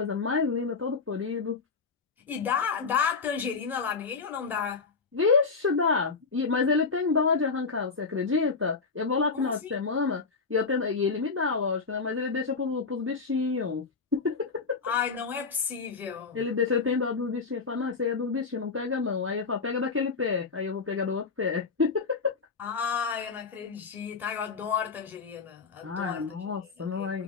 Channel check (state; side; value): quieter; right; 4.8 dB